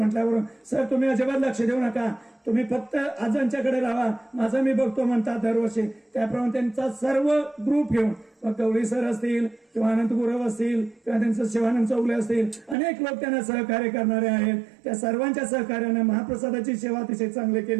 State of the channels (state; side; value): drops out; left; at 12.8 s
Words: सर तुम्ही अजिबात लक्ष देऊ नका, तुम्ही फक्त आजांच्याकडे राहा, माझं मी बघतो म्हणतात दरवर्षी. त्याप्रमाणे त्यांचा सर्व ग्रुप घेऊन गवळी सर असतील किंवा अनंत गुरव असतील किंवा त्यांचं शिवानंद चौगले असतील, अनेक लोक त्यांना सहकार्य करणारे आहेत. त्या सर्वांच्या सहकार्याने महाप्रसादाची सेवा अतिशय चांगली